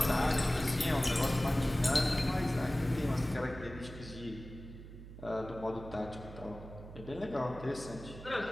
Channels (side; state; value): right; noise; hum, 14 dB below the sound